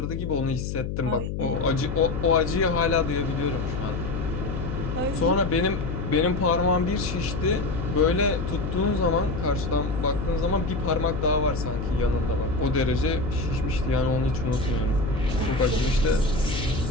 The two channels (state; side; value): noise; left; hum, 4 dB below the sound